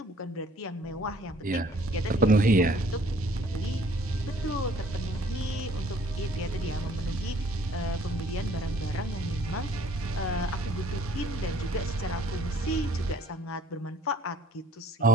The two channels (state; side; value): normal; both; correlation 0.57